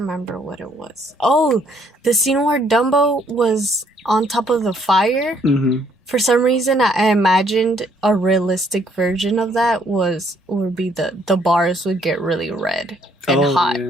what it was. Oh, the scene where Dumbo was on top of the fire. For some reason, I imagined a realistic version of that would be the bars would get really red and hot,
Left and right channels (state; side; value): normal; both; correlation 0.66